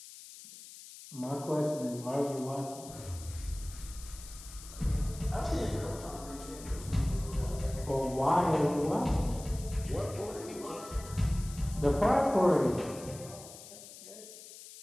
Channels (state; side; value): noise; left; hiss, 16 dB below the sound